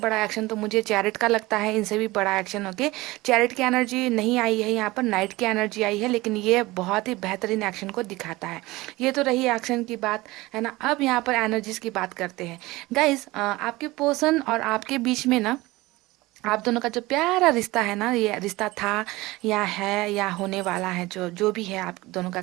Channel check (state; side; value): quieter; left; 20.3 dB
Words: एक्शन तो मुझे चैरिट का लगता है, इनसे भी बड़ा एक्शन। ओके, चैरिट की एनर्जी नहीं आई है यहाँ पर, नाइट की एनर्जी आई है, लेकिन ये बहुत ही बेहतरीन एक्शन को दिखाता है। ये तो रही एक्शन की बात, है ना। अब यहाँ पर एनर्जीज की बात करते हैं गाइस। आपके पर्सन और आपके बीच में ना, आप दोनों का जो प्यारा रिश्ता है ना, ये रिश्ता था या है या होने वाला है, जो जो भी है आप दोनों का